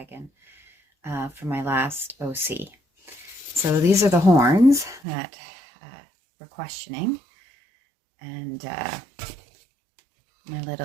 for my last OC. So these are the horns that we're questioning, and my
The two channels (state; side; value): drops out; left; at 5.0 s